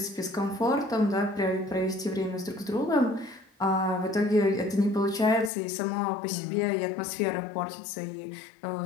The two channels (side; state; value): right; drops out; at 5.5 s